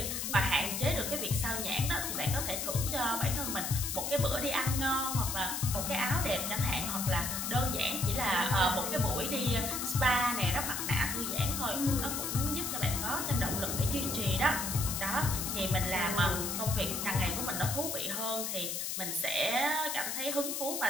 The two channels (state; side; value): noise; left; hiss, 2 dB below the sound